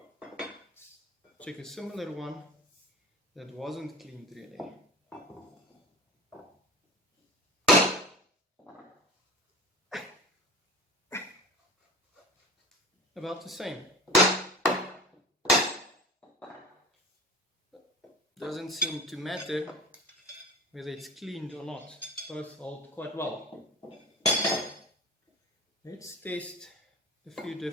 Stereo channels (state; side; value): normal; both; correlation 0.36